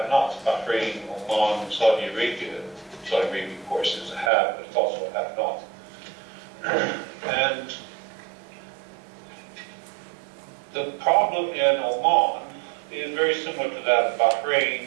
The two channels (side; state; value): left; drops out; at 4.3 s